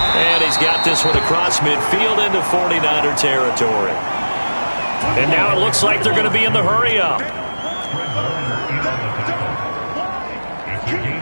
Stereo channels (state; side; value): inverted; both; correlation -1.00